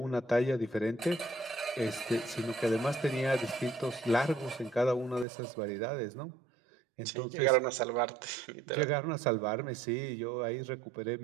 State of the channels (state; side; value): drops out; left; at 5.2 s